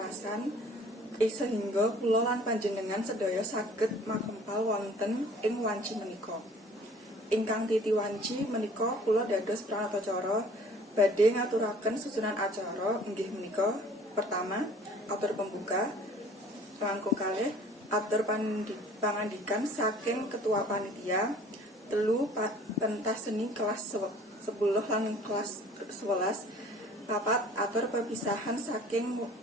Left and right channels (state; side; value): normal; both; correlation 0.51